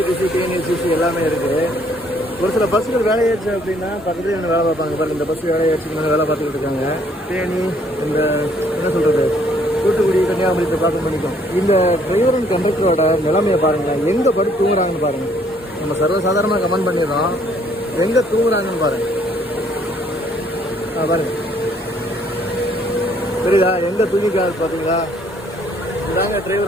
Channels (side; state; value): both; normal; correlation 0.64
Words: டிஎன்எஸ்சிசி எல்லாமே இருக்குது. ஒரு சில பஸ்ஸுகள் வேலையாச்சு அப்படின்னா பக்கத்துல இருந்து வேலை பார்ப்பாங்க. பாருங்க, இந்த பஸ் வேலையாச்சு வேலை பார்த்துக்கிட்டு இருக்காங்க. தேனி, இந்த என்ன சொல்றது, தூத்துக்குடி, கன்னியாகுமரி பார்க்க பண்ணிக்கும். இந்த டிரைவர் அண்ட் கண்டக்டரோட நிலைமையை பாருங்களேன், எங்கே படுத்து தூங்குறாங்கன்னு பாருங்க. நம்ம சர்வசாதாரணமாக கமெண்ட் பண்ணிடுறோம், எங்கே தூங்குறாங்கன்னு பாருங்க. பாருங்க, தெரியுதா எங்கே தூங்கிக்காது பார்த்தீங்களா? இதாங்க